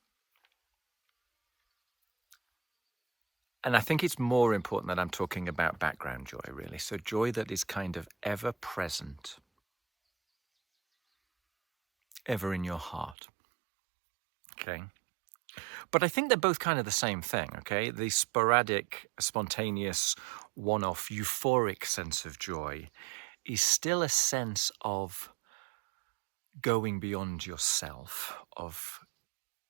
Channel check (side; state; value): left; drops out; at 13.2 s